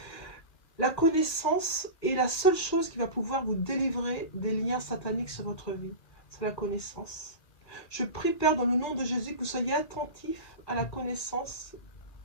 La connaissance est la seule chose qui va pouvoir vous délivrer des liens sataniques sur votre vie. C'est la connaissance. Je prie, Père, dans le nom de Jésus, que vous soyez attentifs à la connaissance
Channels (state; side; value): late; right; 2.4 ms